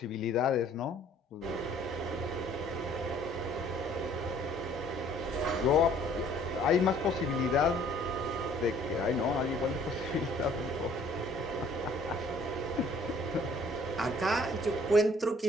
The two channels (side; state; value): both; normal; correlation 0.57